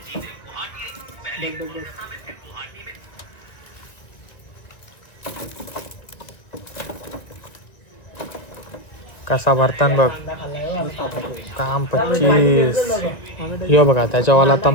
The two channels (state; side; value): late; right; 1.9 ms